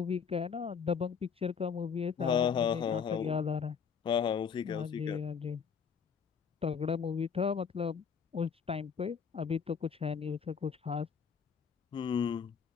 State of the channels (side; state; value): right; quieter; 6.5 dB